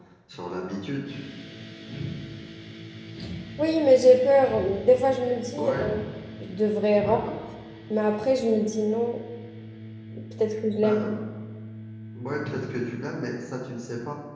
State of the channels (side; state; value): both; identical; correlation 1.00